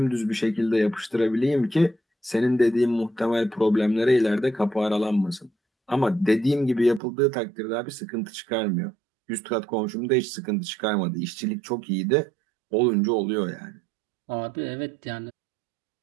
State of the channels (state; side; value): drops out; left; at 7.0 s